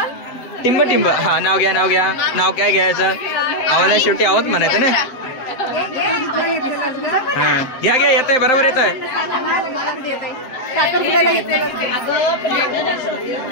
टिंब. हा नाव घ्या. नाव काय घ्यायचं. आव्हाना शेवटी आहोत म्हणायचं ना. हा घ्या येतंय बरोबर येतंय.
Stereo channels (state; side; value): late; right; 7.6 ms